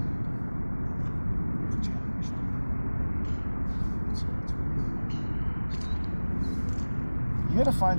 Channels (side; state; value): both; inverted; correlation -1.00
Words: Challenge. You gotta find